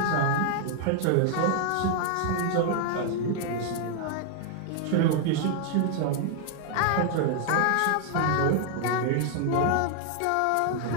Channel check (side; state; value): both; different; correlation 0.00